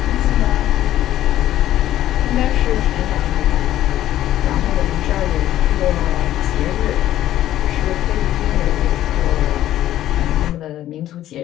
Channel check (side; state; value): right; quieter; 13.1 dB